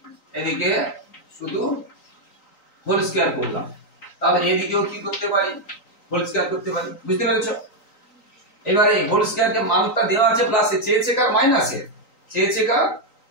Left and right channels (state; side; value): late; right; 3.9 ms